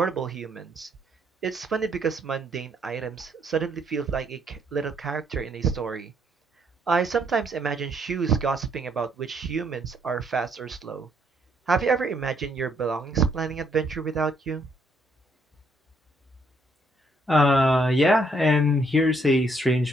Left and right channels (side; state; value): both; normal; correlation 0.70